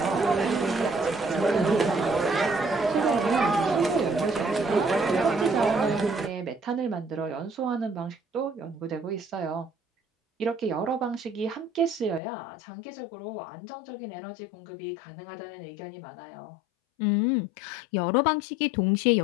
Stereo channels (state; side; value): drops out; right; at 12.2 s